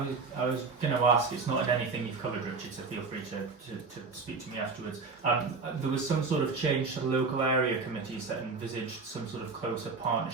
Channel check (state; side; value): quieter; left; 4.4 dB